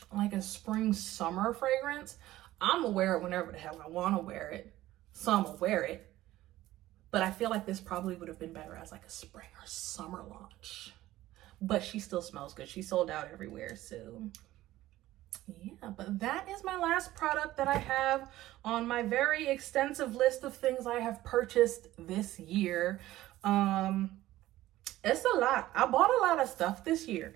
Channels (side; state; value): left; quieter; 15.6 dB